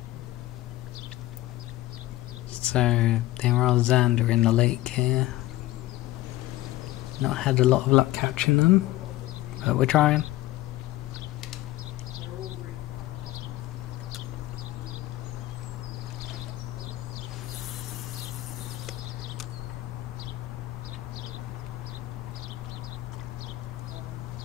So there are Xander in the lake here. Not had a lot of luck catching them, but we're trying.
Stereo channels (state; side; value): quieter; right; 16.6 dB